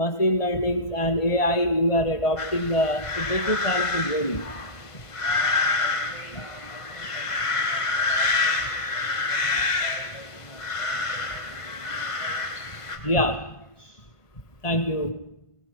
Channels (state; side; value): late; right; 1.5 ms